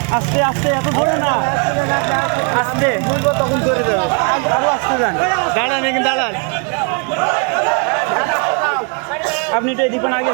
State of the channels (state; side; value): quieter; left; 36.8 dB